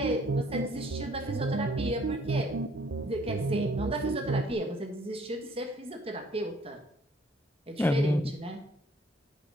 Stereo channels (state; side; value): normal; both; correlation 0.60